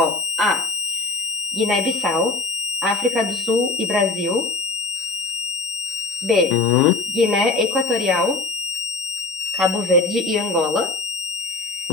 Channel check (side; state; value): right; quieter; 3.6 dB